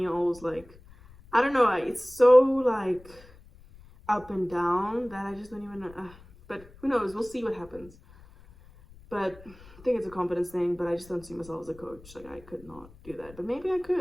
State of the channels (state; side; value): noise; left; rumble, 23 dB below the sound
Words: like, I don't know, it's so like up and down that I just don't even know. But who knows? We'll see what happens. But I think it's a confidence thing, but I just don't see myself as a coach. Like, I could not do that, but maybe I